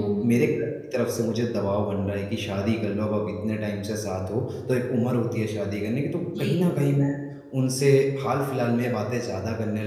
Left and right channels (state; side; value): identical; both; correlation 1.00